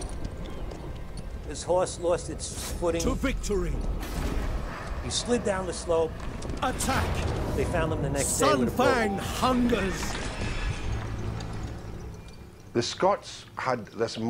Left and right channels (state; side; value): identical; both; correlation 1.00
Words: His horse lost its footing. To victory! He slid down the slope. Attack! They found him the next day with a Sunfang boat. hungers! The Scots had this